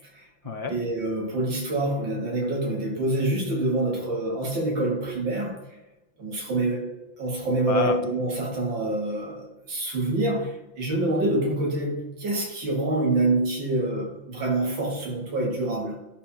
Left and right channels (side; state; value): left; late; 5.8 ms